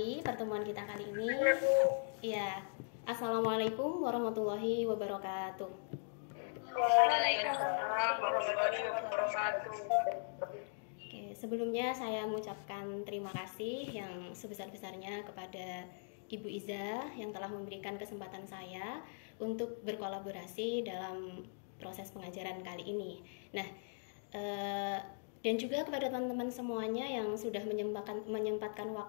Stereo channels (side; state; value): right; silent; digital silence